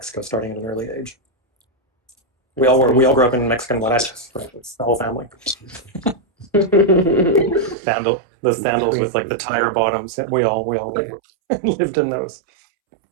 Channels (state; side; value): drops out; left; at 7.8 s